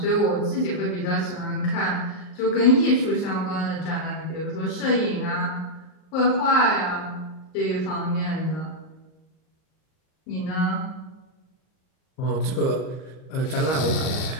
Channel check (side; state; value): right; late; 39 ms